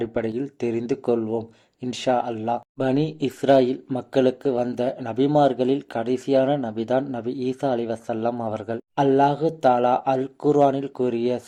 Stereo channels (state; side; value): identical; both; correlation 1.00